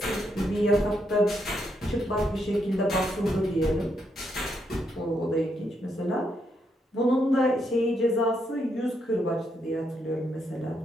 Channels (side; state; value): both; normal; correlation 0.78